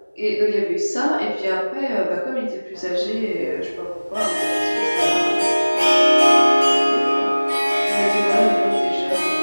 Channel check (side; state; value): both; inverted; correlation -1.00